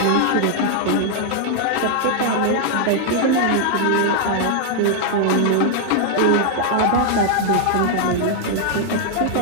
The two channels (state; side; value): different; both; correlation -0.01